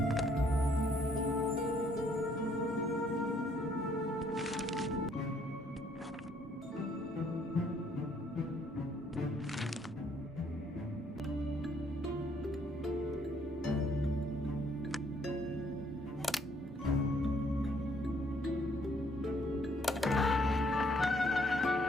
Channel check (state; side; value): normal; both; correlation 0.66